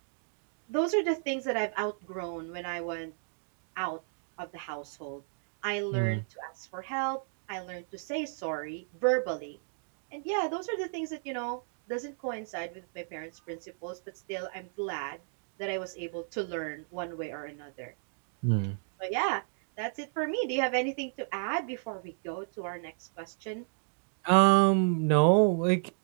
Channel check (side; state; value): left; silent; digital silence